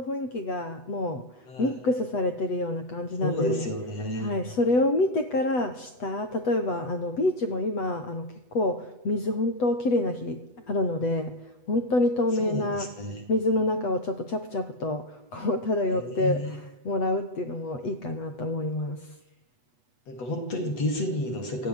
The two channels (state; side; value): late; right; 8.1 ms